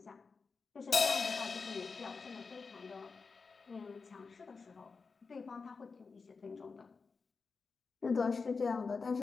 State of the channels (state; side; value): quieter; right; 4.7 dB